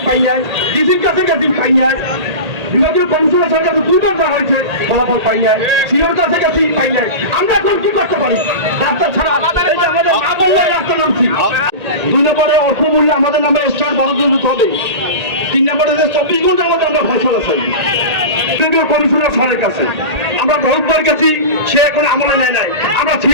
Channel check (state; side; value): late; left; 1.8 ms